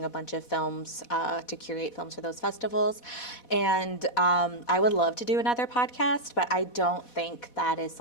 a bunch of films to curate films for those festivals. And I would love to do another podcast, but I don't think that is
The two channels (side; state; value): right; late; 4.1 ms